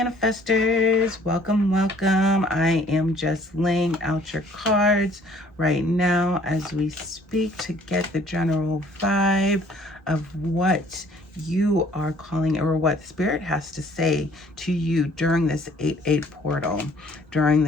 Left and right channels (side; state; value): both; normal; correlation 0.58